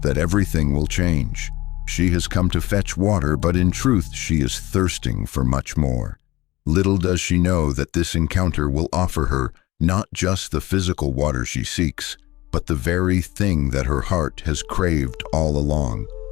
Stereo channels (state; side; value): quieter; right; 18.6 dB